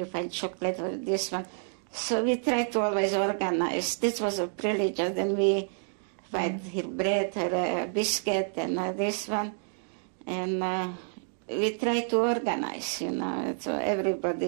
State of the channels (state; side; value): silent; left; digital silence